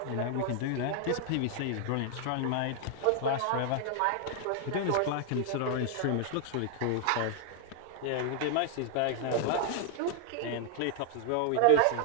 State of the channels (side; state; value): both; different; correlation -0.01